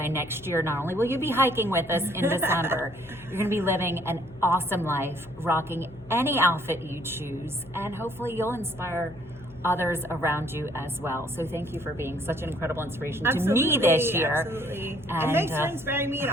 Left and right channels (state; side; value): noise; left; hum, 21 dB below the sound